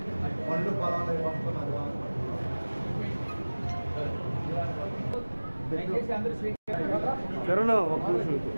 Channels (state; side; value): inverted; both; correlation -1.00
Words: పనులు పొలాలు పంపుతున్నారు. కరోనా ఒక్క నిమిషం